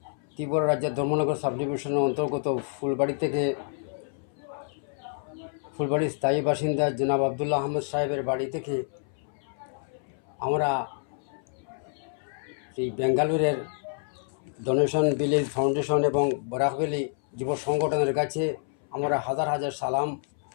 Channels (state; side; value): silent; right; 59 dB below the other